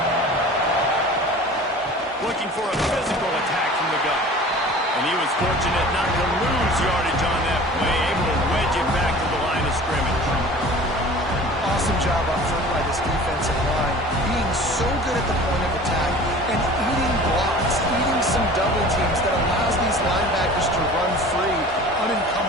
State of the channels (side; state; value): both; normal; correlation 0.42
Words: Looking for a physical attack from the gun. And he was fortunate not to lose yardage on that play, able to wedge it back to the line of scrimmage. Awesome job up front by this defensive line, being so good at the point of attack and eating blocks, eating some double teams that allows these linebackers to run free,